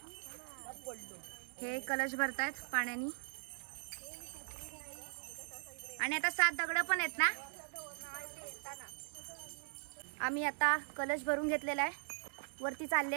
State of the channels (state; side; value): silent; left; digital silence